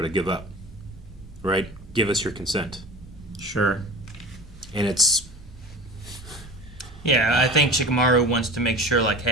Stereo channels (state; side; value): normal; both; correlation 0.36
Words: to give up, right? Give us your consent. Sure. And it's... Yeah, I think Shikamaru wants to make sure, like,